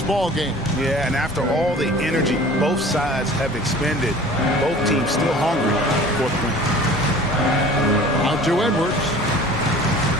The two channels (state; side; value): normal; both; correlation 0.45